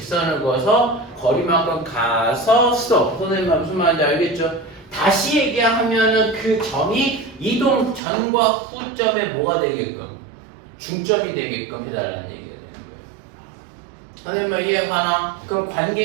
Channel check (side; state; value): left; drops out; at 8.0 s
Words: 그어서 거리만큼 가서 스톱. 선생님 무슨 말인지 알겠죠? 다시 얘기하면은 그 점이 이동 전과 후점에 뭐가 되게끔 중점이 되게끔 해달라는 얘기가 되는 거예요. 선생님 이해가나? 그럼